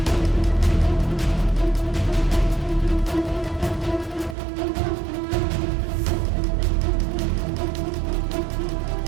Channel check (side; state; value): left; drops out; at 4.4 s